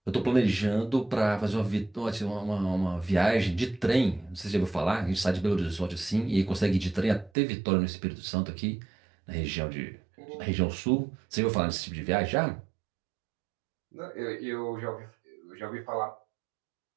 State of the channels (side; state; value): left; drops out; at 7.3 s